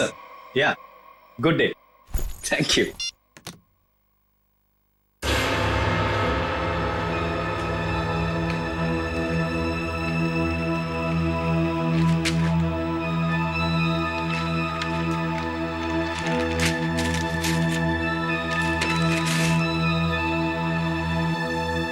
या good day, thank you.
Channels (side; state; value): both; identical; correlation 1.00